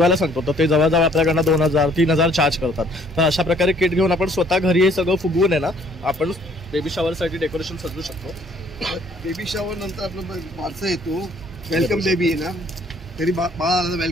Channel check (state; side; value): normal; both; correlation 0.60